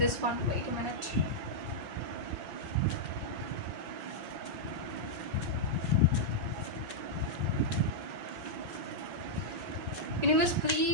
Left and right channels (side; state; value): left; late; 5.3 ms